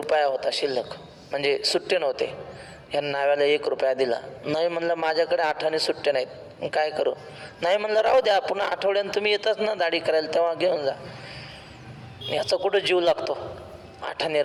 होता शिल्लक, म्हणजे सुट्टे नव्हते. ह्या नाव्याला 1 रुपया दिला. नाही म्हणलं माझ्याकडे 8 आणे सुट्टे नाहीत, काय करू? नाही म्हणलं राहू द्या, पुन्हा आठवड्यानं तुम्ही येताच ना दाढी करायला, तेव्हा घेऊन जा. याचा कुठं जीव लागतो? 8 आणे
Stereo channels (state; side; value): identical; both; correlation 1.00